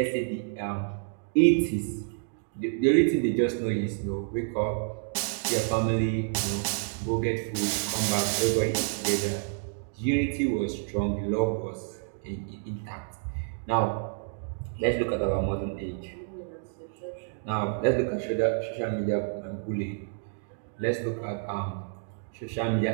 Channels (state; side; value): silent; left; digital silence